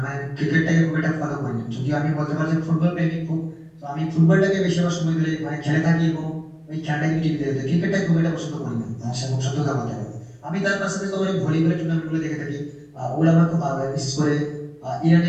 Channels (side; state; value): both; identical; correlation 1.00